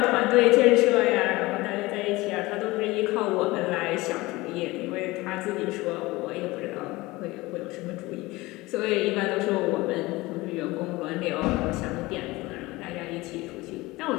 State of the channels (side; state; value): right; quieter; 20.7 dB